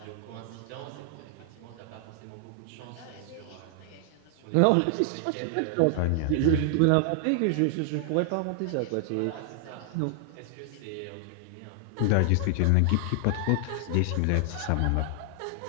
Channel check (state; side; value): different; both; correlation 0.00